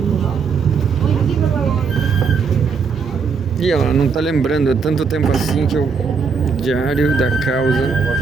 E ela não tá lembrando, é tanto tempo assim que eu... Diário da Causa.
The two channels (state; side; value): quieter; left; 5.5 dB